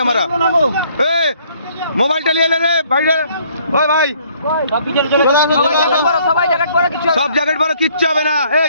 আমরা? মোবাইলটা নিয়ে এলে রে ভাই রে, ওই ভাই সব জ্যাকেট পরো, কিচ্ছু হবে না। এই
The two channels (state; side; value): inverted; both; correlation -0.63